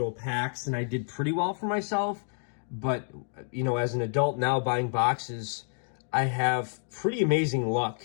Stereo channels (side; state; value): right; silent; 57 dB below the other